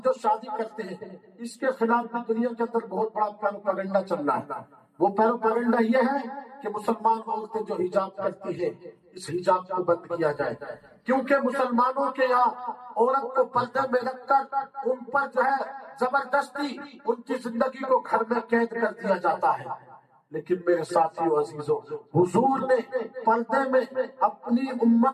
جو شادی کرتے ہیں اس کے خلاف بھی دنیا کے اندر بہت بڑا پیروپیگنڈا چل رہا ہے۔ وہ پیروپیگنڈا یہ ہے کہ مسلمان عورتیں جو حجاب کرتی ہیں اس حجاب کو بند کیا جائے، کیونکہ مسلمانوں کے یہاں عورت کو پردے میں رکھ کر ان پر جو ہے زبردستی ان کی زندگی کو گھر میں قید کر دیا جاتا ہے۔ لیکن میرے ساتھیوں عزیزوں، حضور نے پردے میں اپنی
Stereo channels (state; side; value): identical; both; correlation 1.00